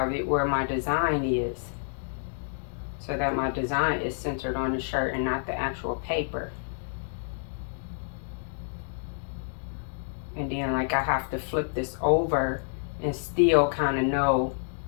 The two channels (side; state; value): right; silent; digital silence